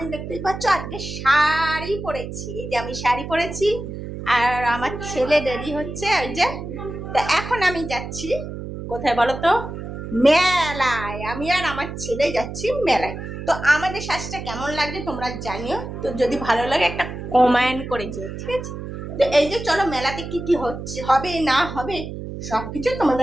দেখতেই পাচ্ছ আজকে শাড়ি পরেছি, এই যে আমি শাড়ি পরেছি, আর আমার ছেলে রেডি হচ্ছে ওই যে। তো এখন আমি যাচ্ছি কোথায় বলো তো? মেলায়। আমি আর আমার ছেলে যাচ্ছি মেলায়। তো আমাদের সাজটা কেমন লাগছে তোমরা জানিও, তো যদি ভালো লাগে একটা কমেন্ট করে যেও, ঠিক আছে? তো এই যে চলো, মেলাতে কি কি হচ্ছে, হবে না হবে সবকিছু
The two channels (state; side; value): noise; right; hum, 8 dB below the sound